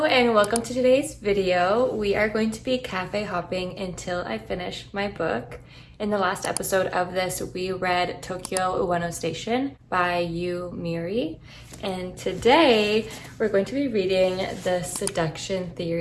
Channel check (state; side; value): identical; both; correlation 1.00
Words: and welcome to today's video. We are going to be cafe hopping until I finish my book. In the last episode of this, we read Tokyo Ueno Station by Miri. And today we're going to be reading The Seduction